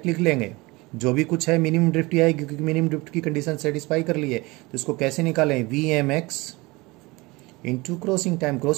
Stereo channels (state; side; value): quieter; left; 23.4 dB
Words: लिख लेंगे जो भी कुछ है, मिनिमम ड्रिफ्ट ही आएगी क्योंकि मिनिमम ड्रिफ्ट की कंडीशन सेटिस्फाई कर ली है। तो इसको कैसे निकालें? VMX into crossing time.